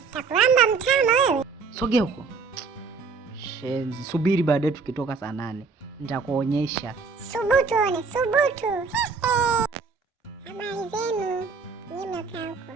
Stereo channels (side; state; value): left; quieter; 4.9 dB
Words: Takulamba mtama wewe. Sogea huko. Shenzi, subiri baadaye tukitoka saa 8. Nitakuonyesha. Subutu one, subutu. Habari zenu. Nyinyi mnakaa huko.